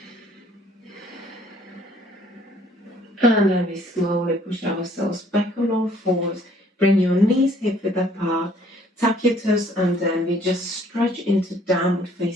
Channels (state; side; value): normal; both; correlation 0.60